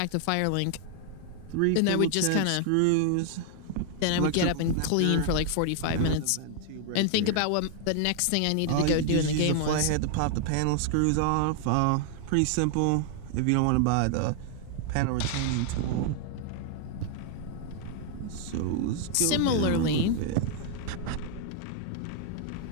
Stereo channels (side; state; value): both; different; correlation 0.00